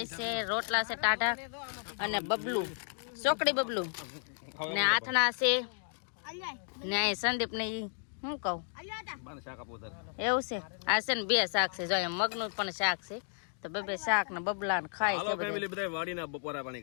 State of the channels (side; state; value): right; silent; 56 dB below the other